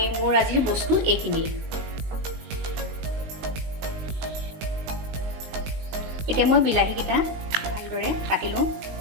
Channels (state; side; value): late; left; 19 ms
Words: মোৰ আজিৰ বস্তু এইখিনি। এতিয়া মই বিলাহীকেইটা ভালদৰে কাটি লওঁ।